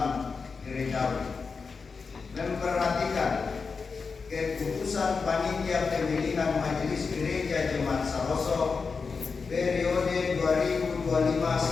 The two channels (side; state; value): right; quieter; 4.9 dB